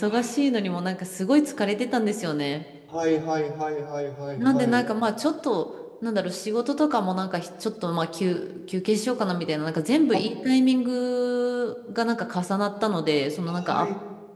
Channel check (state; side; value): identical; both; correlation 1.00